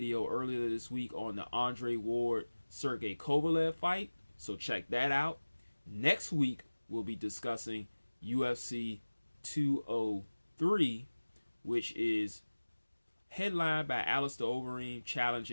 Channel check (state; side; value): inverted; both; correlation -1.00